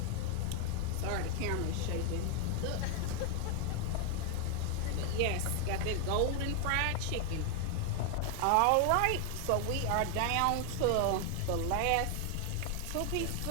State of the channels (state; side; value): different; both; correlation 0.00